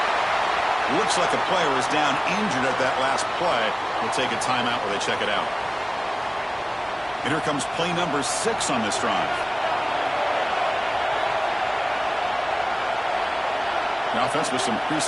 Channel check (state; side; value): identical; both; correlation 1.00